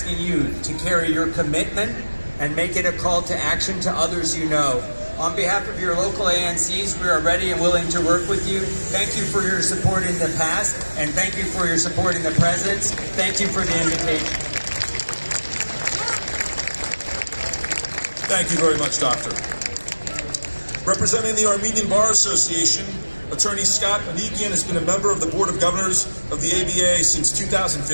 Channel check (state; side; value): inverted; both; correlation -1.00